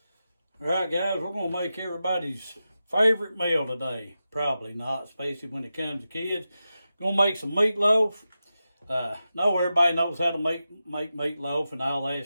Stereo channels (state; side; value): inverted; both; correlation -0.91